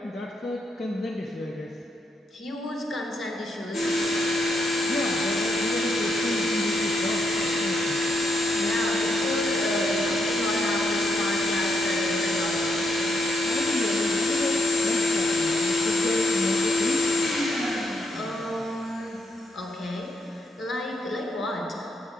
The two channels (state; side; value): normal; both; correlation 0.77